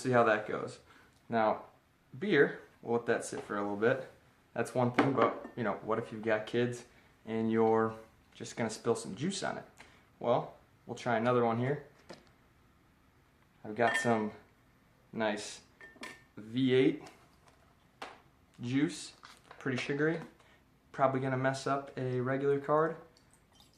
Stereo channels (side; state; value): both; identical; correlation 1.00